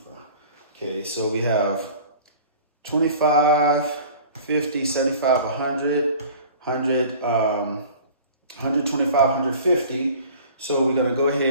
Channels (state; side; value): inverted; both; correlation -0.44